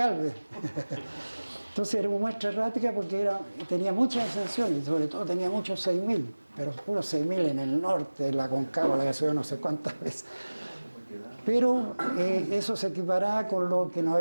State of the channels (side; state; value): both; inverted; correlation -1.00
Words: Entonces era una muestra errática porque tenía muchas ascensiones, sobre todo tenía muchos 6.000, pero puros 6.000 en el norte, en la Concagua, la que subió no sé cuántas veces. Pero eso se equiparaba con lo que no